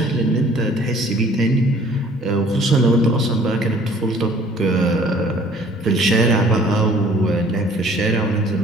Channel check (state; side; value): normal; both; correlation 0.55